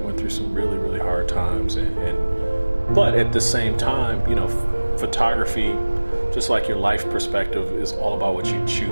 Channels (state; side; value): inverted; both; correlation -1.00